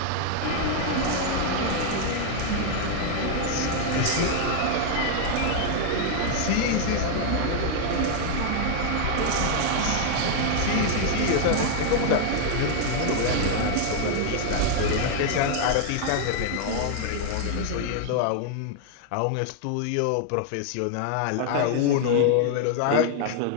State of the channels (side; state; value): both; different; correlation 0.00